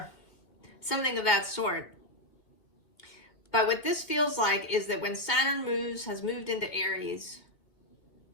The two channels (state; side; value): late; right; 2.2 ms